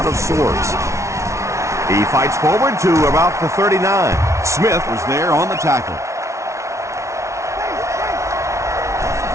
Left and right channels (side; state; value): left; late; 0.14 ms